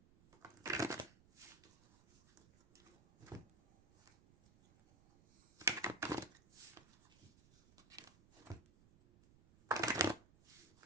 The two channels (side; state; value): right; noise; rumble, 26 dB below the sound